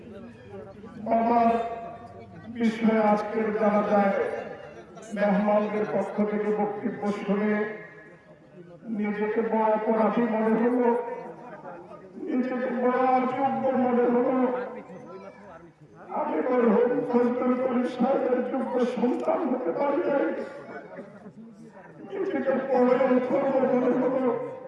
বাবার বিষয়ে আজকের জানা যায় মেহমানদের পক্ষ থেকে বক্তব্য শুনে নিজেকে বড় অপরাধী মনে হলো, নিজেকে বড় অযোগ্য মনে হলো। আমি মরহুম ফজলুল করিম সাহেবের যোগ্য সন্তান হতে পারি নাই, নিজেকে বড় অথর্ব মনে হলো,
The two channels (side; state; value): both; identical; correlation 1.00